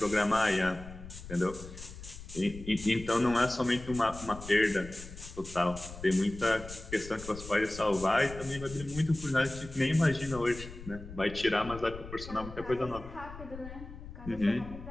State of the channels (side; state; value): left; noise; rumble, 13 dB below the sound